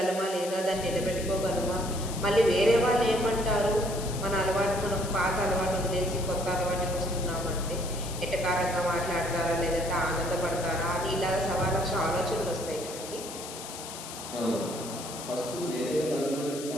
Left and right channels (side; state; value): left; noise; hiss, 11 dB below the sound